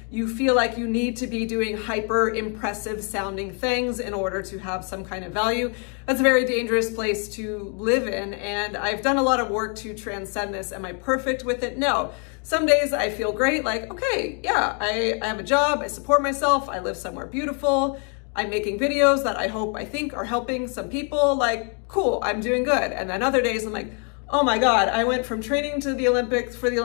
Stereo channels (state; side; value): quieter; right; 39.0 dB